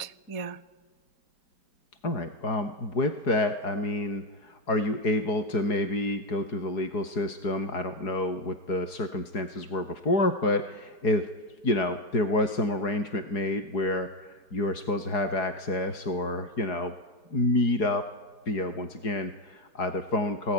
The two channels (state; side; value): late; right; 4.8 ms